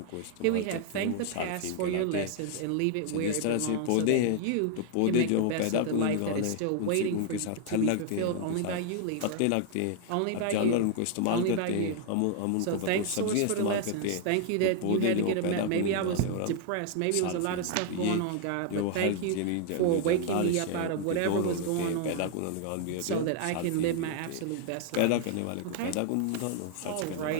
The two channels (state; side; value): different; both; correlation 0.00